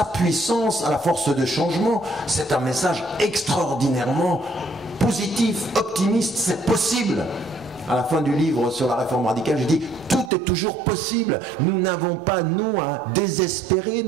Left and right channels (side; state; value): left; drops out; at 10.3 s